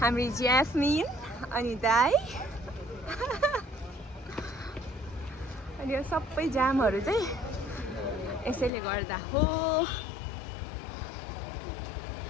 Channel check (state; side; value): drops out; right; at 8.7 s